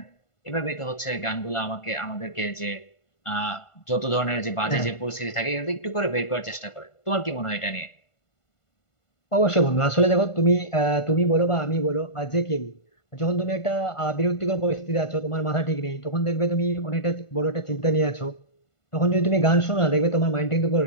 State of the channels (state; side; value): late; right; 1.5 ms